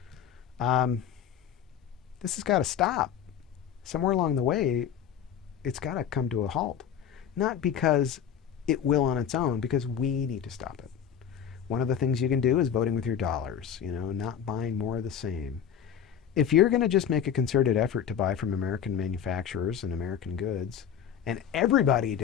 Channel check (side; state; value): right; quieter; 8.6 dB